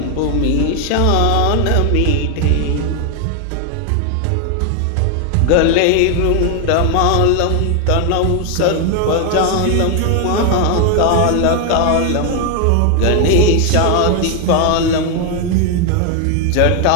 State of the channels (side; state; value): both; different; correlation 0.01